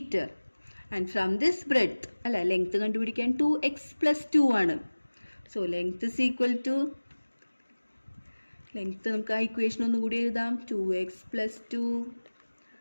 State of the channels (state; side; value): inverted; both; correlation -1.00